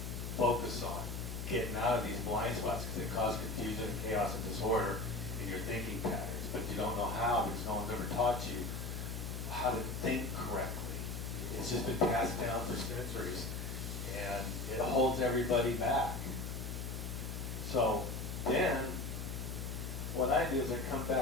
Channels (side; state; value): left; noise; hum, 5 dB below the sound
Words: focus on. Getting out of these blind spots because they cause confusion, chaos, and disorder in your thinking patterns. But you don't know how because no one's ever taught you how to think correctly. It's just been passed down for centuries, and it holds everybody back. So then, what I do is I come